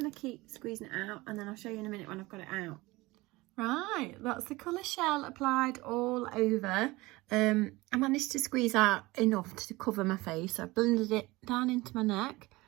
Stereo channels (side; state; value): left; quieter; 21.2 dB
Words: to keep squeezing it out, and then I'll show you in a minute when I've got it out. Right, that's the colour Shell applied all over. I managed to squeeze out enough to cover my face. So I blended it down into my neck.